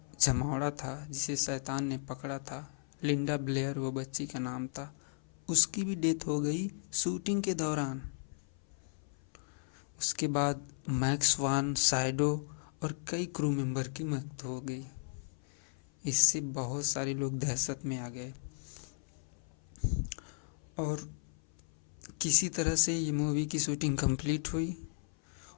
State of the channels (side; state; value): right; silent; 54 dB below the other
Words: जमावड़ा था, जिसे शैतान ने पकड़ा था, लिंडा ब्लेयर वो बच्ची का नाम था, उसकी भी डेथ हो गई शूटिंग के दौरान। उसके बाद मैक्स वान साइडो और कई क्रू मेंबर की मौत हो गई। इससे बहुत सारे लोग दहशत में आ गए और किसी तरह से ये मूवी की शूटिंग कंप्लीट हुई।